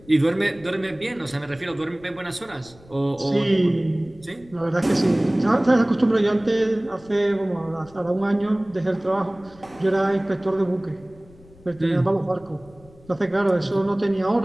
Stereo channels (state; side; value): noise; left; rumble, 25 dB below the sound